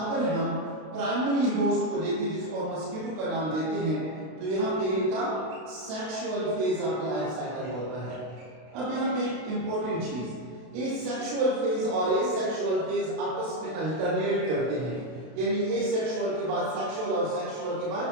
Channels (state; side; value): late; left; 32 ms